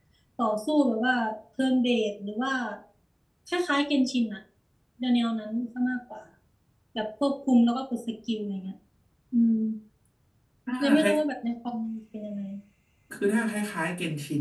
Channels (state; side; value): identical; both; correlation 1.00